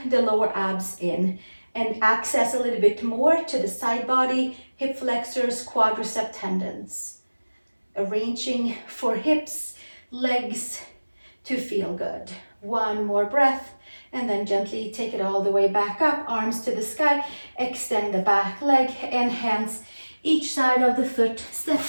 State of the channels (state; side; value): inverted; both; correlation -1.00